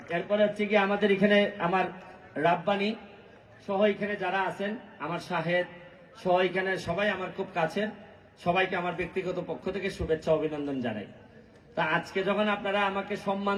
এরপরে হচ্ছে কি আমাদের এখানে আমার রাব্বানি সহ এখানে যারা আছেন, আমার শাহেদ সহ এখানে সবাই আমার খুব কাছের, সবাইকে আমার ব্যক্তিগত পক্ষ থেকে শুভেচ্ছা অভিনন্দন জানাই। তা আজকে যখন আপনারা আমাকে সম্মান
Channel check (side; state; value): both; identical; correlation 1.00